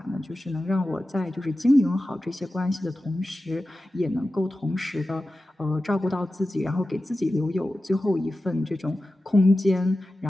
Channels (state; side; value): normal; both; correlation 0.94